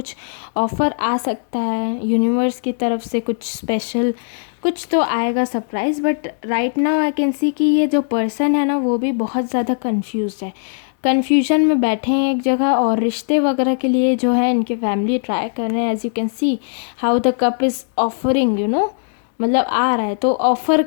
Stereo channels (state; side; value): silent; right; digital silence